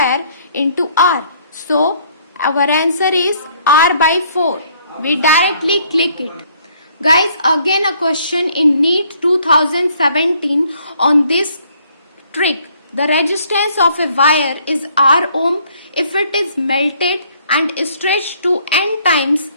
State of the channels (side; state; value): both; inverted; correlation -0.63